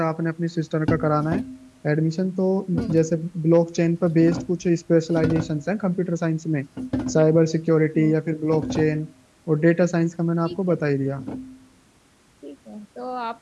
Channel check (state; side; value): identical; both; correlation 1.00